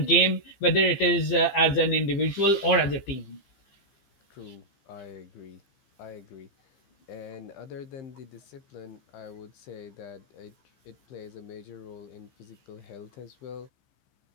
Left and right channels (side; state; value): right; late; 15 ms